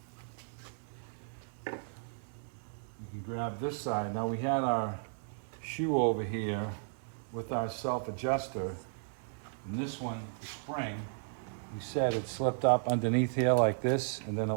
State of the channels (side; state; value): left; silent; digital silence